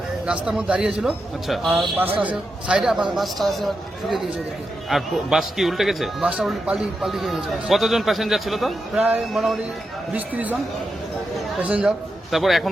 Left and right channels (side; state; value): both; normal; correlation 0.87